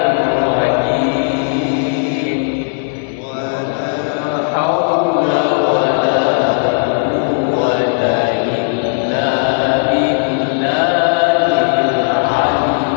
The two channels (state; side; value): silent; right; 64 dB below the other